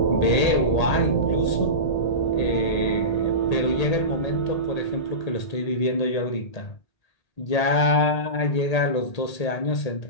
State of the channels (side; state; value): right; late; 1.8 ms